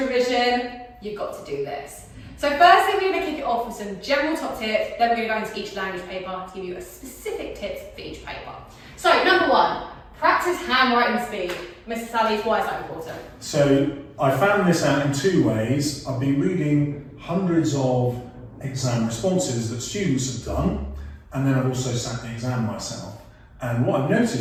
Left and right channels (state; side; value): identical; both; correlation 1.00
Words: you've got to do this. So firstly we're going to kick it off with some general top tips, then we're going to go into each language paper to give you a specific tips for each paper. So number one, practice handwriting speed. Mr. Sally's, why is that important? So I found this out in two ways. I've been reading hundreds of exam responses that students have done, and then I've also sat the exam myself. And what I've